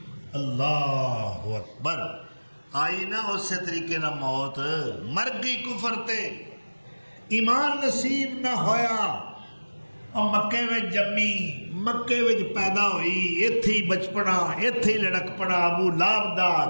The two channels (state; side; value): inverted; both; correlation -1.00